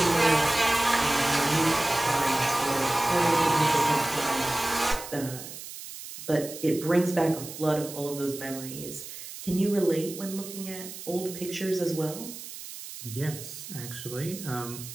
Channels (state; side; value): noise; right; hiss, 12 dB below the sound